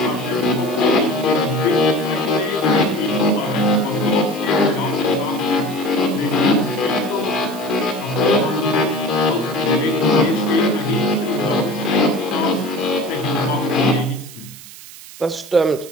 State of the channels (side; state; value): right; noise; hiss, 17 dB below the sound